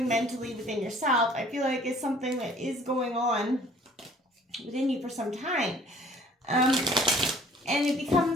mentally within yourself, I feel like it's something that is going on within you for some time. And it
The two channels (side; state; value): both; normal; correlation 0.54